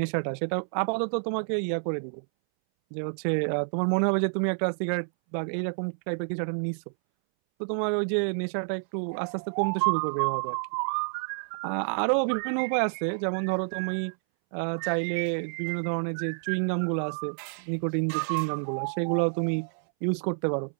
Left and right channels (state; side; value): silent; left; 59 dB below the other